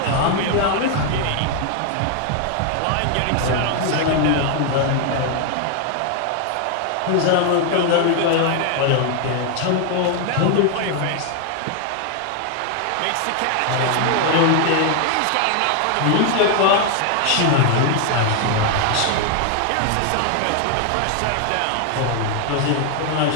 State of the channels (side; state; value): both; different; correlation 0.01